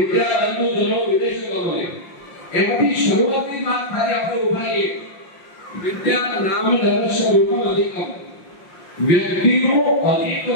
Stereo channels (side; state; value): right; late; 5.7 ms